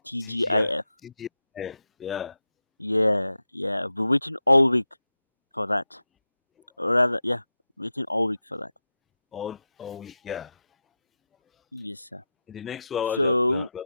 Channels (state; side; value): inverted; both; correlation -0.91